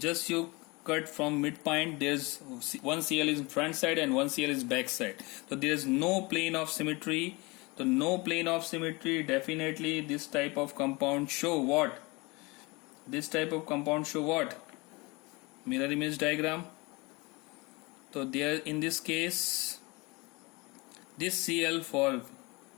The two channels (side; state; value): right; quieter; 25.4 dB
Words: you cut from midpoint, there's one Cl is front side and one Cl is back side. So there is no plane of symmetry. So no plane of symmetry, definitely this type of compound show what? This type of compound show what? Mirror image diagram. So there in this case, this Cl for